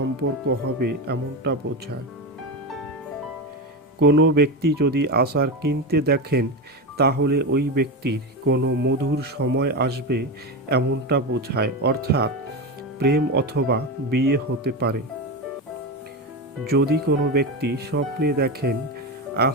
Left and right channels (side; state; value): both; normal; correlation 0.17